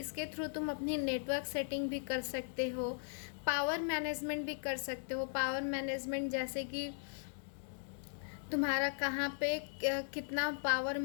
थ्रू तुम अपनी नेटवर्क सेटिंग भी कर सकते हो, पावर मैनेजमेंट भी कर सकते हो। पावर मैनेजमेंट जैसे कि तुम्हारा कहाँ पे कितना पावर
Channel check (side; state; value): right; silent; 52 dB below the other